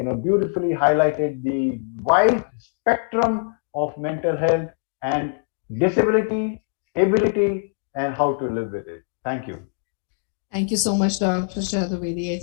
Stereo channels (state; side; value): silent; right; digital silence